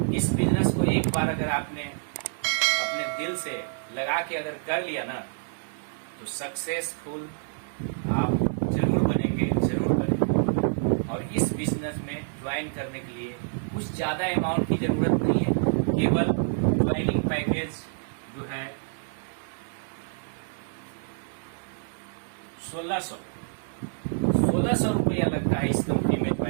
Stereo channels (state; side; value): silent; left; 56 dB below the other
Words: इस बिजनेस को एक बार अगर आपने अपने दिल से लगा के अगर कर लिया ना, तो सक्सेसफुल आप जरूर बनेंगे। और इस बिजनेस में ज्वाइन करने के लिए कुछ ज्यादा अमाउंट की जरूरत नहीं है। केवल ज्वाइनिंग पैकेज जो है 1600 रुपया लगता है इस कंपनी में